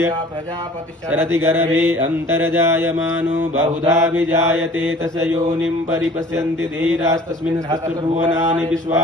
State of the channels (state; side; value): normal; both; correlation 0.49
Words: शरति गर्भे अन्तर्जायमानो बहुधा विजायते तस्य योनिं परिपश्यन्ति धीरास्तस्मिन् सहस्रभुवनानि